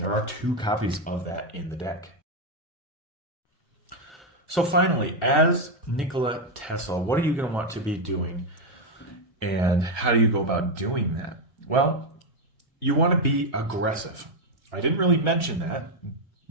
are 2 copies of that in the deck. So finally, as Nikola Tesla, what are you going to want to be doing? And how do you go about doing that? Well, you want to be aggressive. I didn't really mention that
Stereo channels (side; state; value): both; normal; correlation 0.04